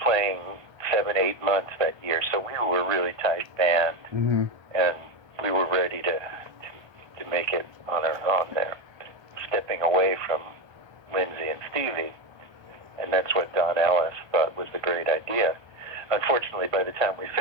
7-8 months that year, so we were a really tight band, Mm-hmm. and we were ready to make it on our own there, stepping away from Lindsay and Stevie. And that's what Don Ellis thought was the great idea. Unfortunately, by the time we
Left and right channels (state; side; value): late; left; 1.3 ms